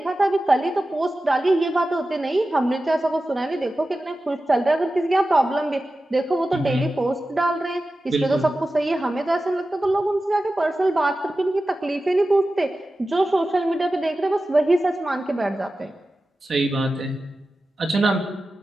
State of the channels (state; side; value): normal; both; correlation 0.94